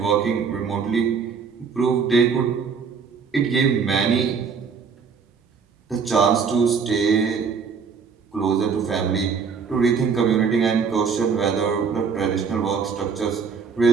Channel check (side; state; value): left; quieter; 5.9 dB